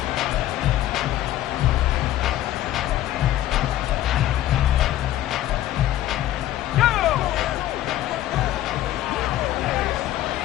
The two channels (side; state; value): right; quieter; 13.6 dB